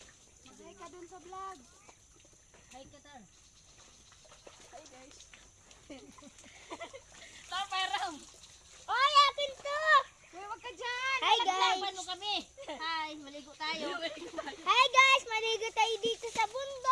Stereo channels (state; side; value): identical; both; correlation 1.00